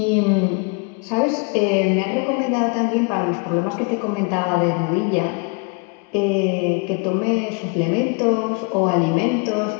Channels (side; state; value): right; quieter; 33.1 dB